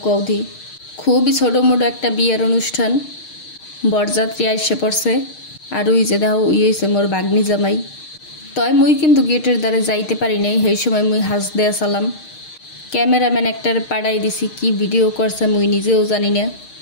কৌধি। খুবই ছোটো মোটো একটা বিয়ের অনুষ্ঠান, বরযাত্রী আইসে পড়ছে। আর ওই যে দেখো ওই হয়েছে মোর বাগনি জামাই। তয় মুই কিন্তু গেটের দ্বারে যাইতে পারি নাই, সেই সময় মুই হাস দেয়া সালাম। ক্যামেরাম্যান একটার পাড়াই দিছি, কি ভিডিও করছে মুই নিজেও জানি না।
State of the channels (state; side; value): late; right; 6.5 ms